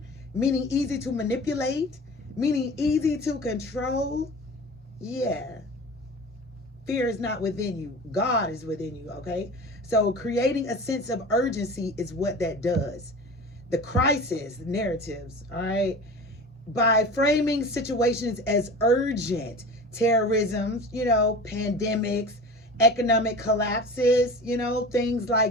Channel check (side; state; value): both; normal; correlation 0.35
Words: meaning easy to manipulate, meaning easy to control. Yeah. Fear is not within you. God is within you, okay? So creating a sense of urgency is what that does. The crisis narratives, all right? By framing situations as urgent, terrorism, pandemics, economic collapses, things